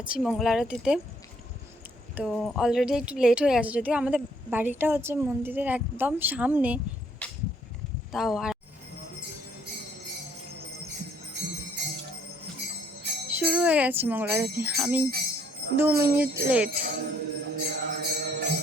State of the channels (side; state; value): both; normal; correlation 0.64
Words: মঙ্গল আরতিতে। তো অলরেডি একটু লেট হয়ে গেছে, যদিও আমাদের বাড়িটা হচ্ছে মন্দিরের একদম সামনে। তাও আর শুরু হয়ে গেছে মঙ্গল আরতি, আমি 2 মিনিট লেট।